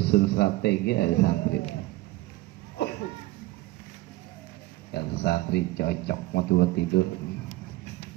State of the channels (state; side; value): quieter; left; 18.6 dB